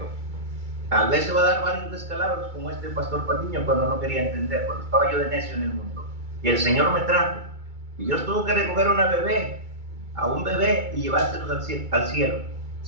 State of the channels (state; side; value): late; left; 2.3 ms